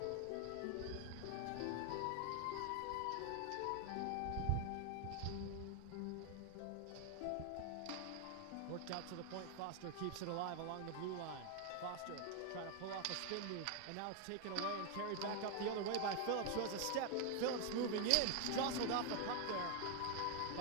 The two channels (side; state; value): both; different; correlation 0.00